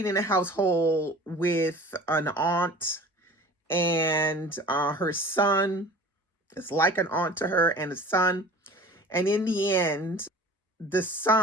in a household with an aunt, and her son is like an aunt to her, and a son. And in the end, the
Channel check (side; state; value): both; normal; correlation 0.42